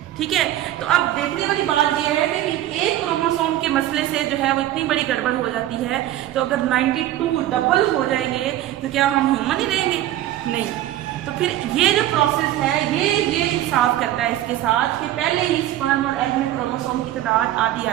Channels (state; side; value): quieter; left; 13.6 dB